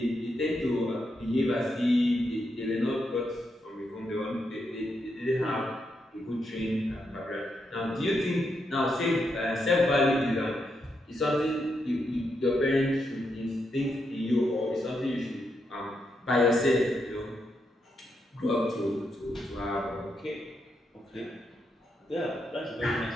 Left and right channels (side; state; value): both; normal; correlation 0.82